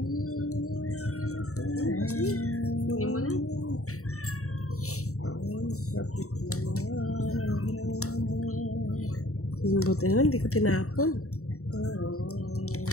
Hindi mo na. Buti na, hindi ko tinapon.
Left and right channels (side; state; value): right; late; 0.64 ms